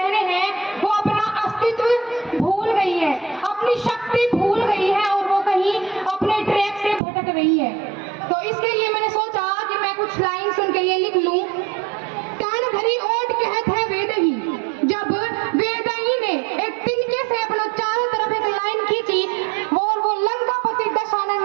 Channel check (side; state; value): left; drops out; at 7.0 s